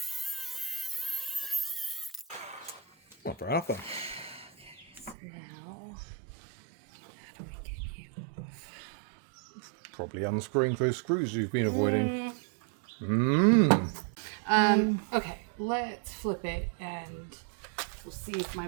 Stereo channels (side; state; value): left; drops out; at 5.2 s